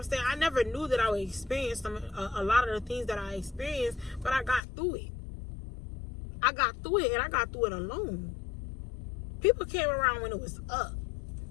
saying? I never knew that I would experience a lot of the things that I experienced, but I got through it. I got through it, and I got through it alone. People came around when it was up.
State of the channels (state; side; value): drops out; right; at 4.6 s